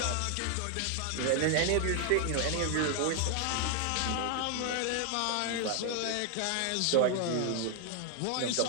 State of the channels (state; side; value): different; both; correlation 0.00